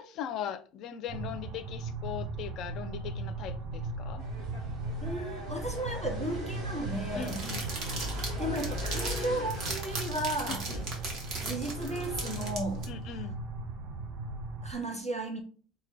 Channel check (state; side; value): normal; both; correlation 0.36